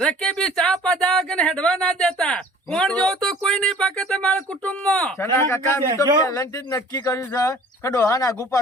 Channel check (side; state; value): both; normal; correlation 0.49